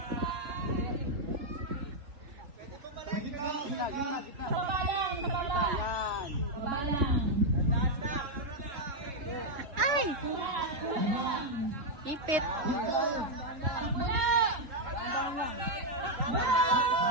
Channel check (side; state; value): left; late; 3.7 ms